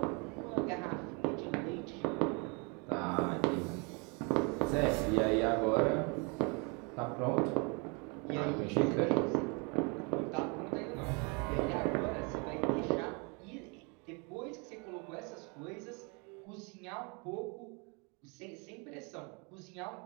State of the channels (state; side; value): quieter; left; 32.4 dB